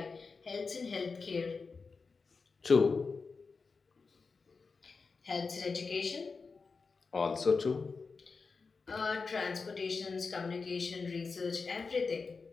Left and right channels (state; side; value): quieter; right; 4.6 dB